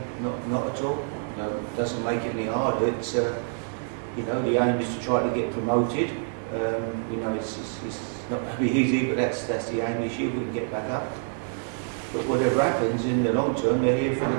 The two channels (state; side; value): silent; left; 60 dB below the other